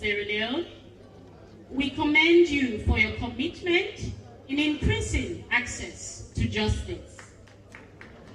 Leone. We commend you for your commitment in increasing access to justice.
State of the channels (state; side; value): identical; both; correlation 1.00